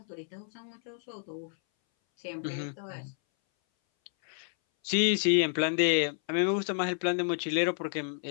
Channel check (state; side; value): silent; right; 58 dB below the other